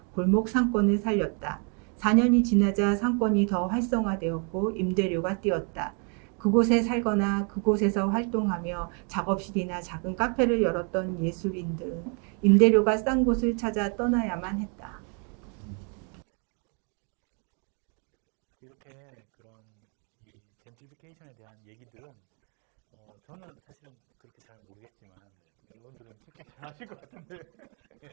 골목 상권을 살렸다. 4년이 지나자 상권이 더 활성화되었고 임대료가 뛰었다. 그곳에 살거나 그곳에서 활동하며 작업실이나 작은 카페를 열었던 예술인들은 임대료가 싼 곳을 찾아 떠나야만 했다. 이렇게 그런 이 젠트리피케이션에 대한 얘기들은 저는 사실은 그렇게 잘 모르겠지만 여러분들은 특히 잘 아실 것 같은데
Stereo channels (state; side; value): quieter; left; 37.9 dB